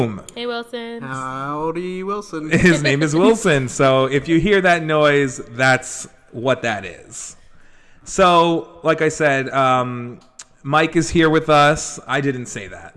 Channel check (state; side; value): identical; both; correlation 1.00